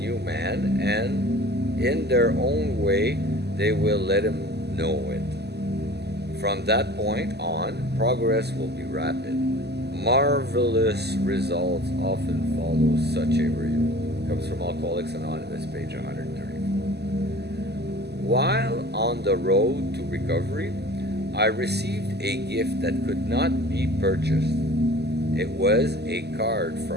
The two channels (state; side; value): late; left; 0.48 ms